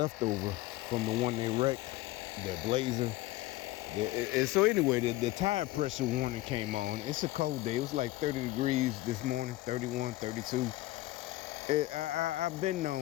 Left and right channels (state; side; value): quieter; right; 17.7 dB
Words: from the one they wrecked, that Blazer. And so anyway, the tire pressure warning came on. It's a cold day. It was like 30 degrees this morning, 31, 32. I've been